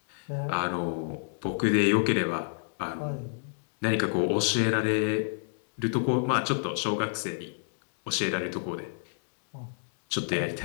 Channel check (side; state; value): right; silent; digital silence